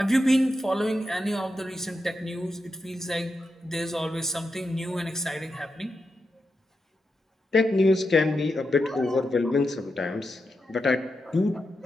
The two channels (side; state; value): both; normal; correlation 0.87